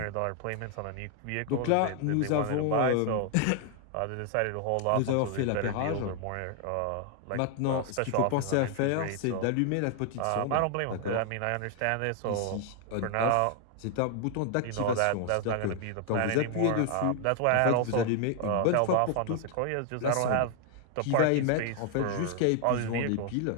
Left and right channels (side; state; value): both; different; correlation 0.00